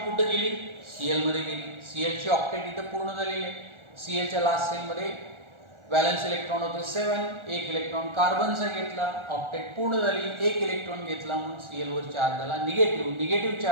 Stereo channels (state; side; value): late; left; 1.4 ms